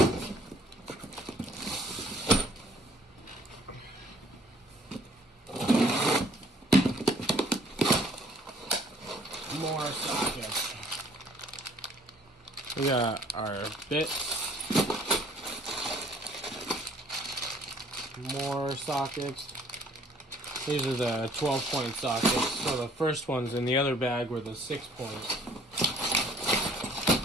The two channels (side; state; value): both; normal; correlation 0.58